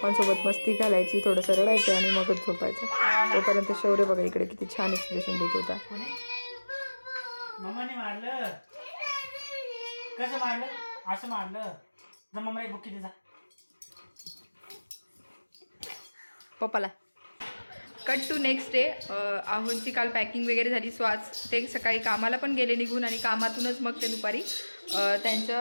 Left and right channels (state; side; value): inverted; both; correlation -1.00